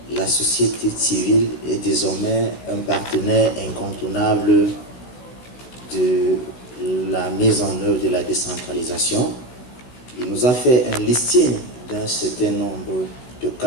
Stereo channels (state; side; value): late; right; 16 ms